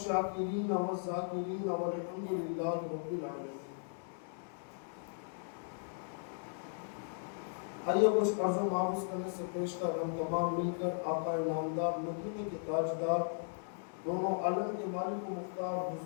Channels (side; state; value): right; silent; digital silence